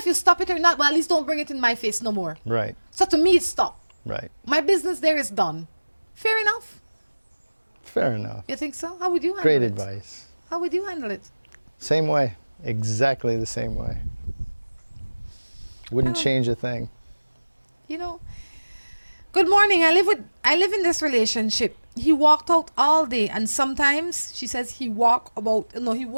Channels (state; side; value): inverted; both; correlation -1.00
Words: you stop it or not, but at least don't bring it in my face no more. Right. So to me, it's stop. Right. My business there is done. Fair enough? Fair enough. You think so? How would you handle Great it? advice. How would you handle it? Same way. Exactly the same way. Wouldn't change a thing. You know, good morning. I live in this relationship. He walked out all day, and sometimes she says he